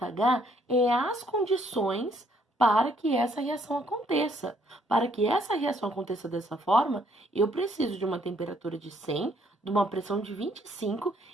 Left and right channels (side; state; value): both; normal; correlation 0.67